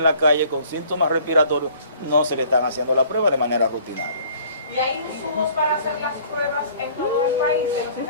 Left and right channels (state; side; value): inverted; both; correlation -0.54